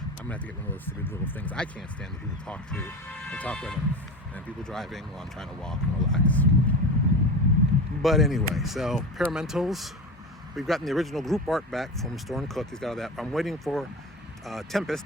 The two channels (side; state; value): both; normal; correlation 0.27